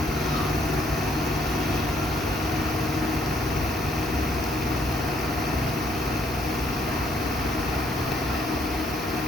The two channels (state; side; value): normal; both; correlation 0.68